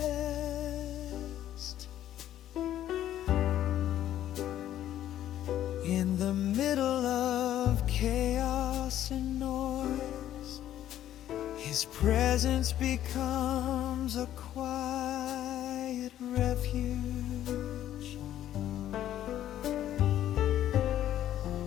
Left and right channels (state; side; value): quieter; right; 12.0 dB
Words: In the middle of chaos and noise, His presence becomes a quiet refuge.